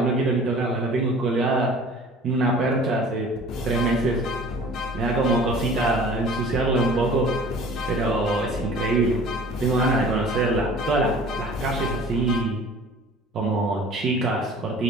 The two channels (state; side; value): normal; both; correlation 0.46